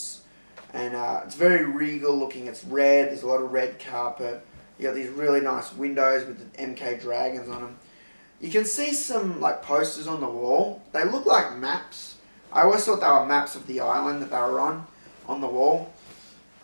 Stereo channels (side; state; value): both; inverted; correlation -1.00